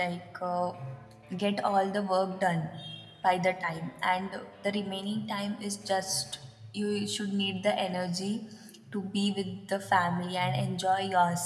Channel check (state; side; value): identical; both; correlation 1.00